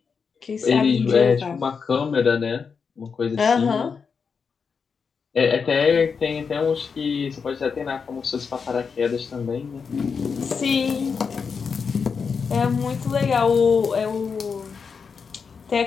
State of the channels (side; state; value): right; quieter; 5.7 dB